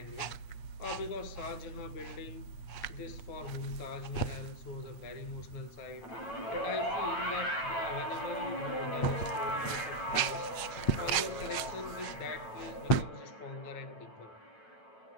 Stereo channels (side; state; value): right; late; 8.5 ms